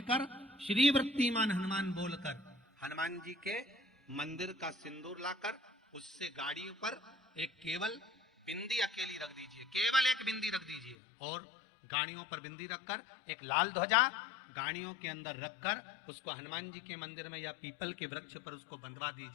श्री वृत्तिमान हनुमान बोलकर हनुमान जी के मंदिर का सिंदूर लाकर उससे गाड़ियों पर एक केवल बिंदी अकेली रख दीजिए, केवल एक बिंदी रख दीजिए, और गाड़ियों पर बिंदी रखकर एक लाल ध्वजा गाड़ियों के अंदर रखकर उसको हनुमान जी के मंदिर में या पीपल के वृक्ष पर उसको बंधवा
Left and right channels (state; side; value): drops out; right; at 11.0 s